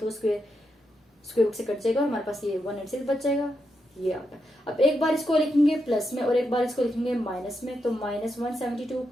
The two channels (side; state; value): both; normal; correlation 0.84